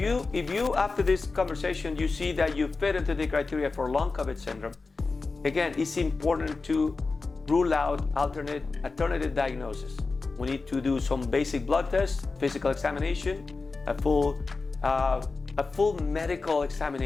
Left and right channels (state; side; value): quieter; right; 4.0 dB